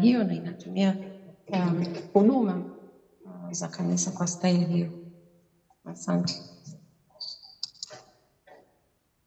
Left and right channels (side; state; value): both; identical; correlation 1.00